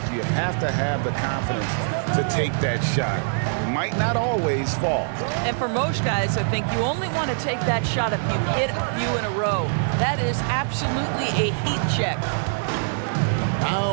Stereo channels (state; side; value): silent; left; digital silence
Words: you have to have the confidence to take that shot. It might not always fall. And for most guys, I think you only want to take that shot if you've hit a few in a row. That is absolutely a heat check.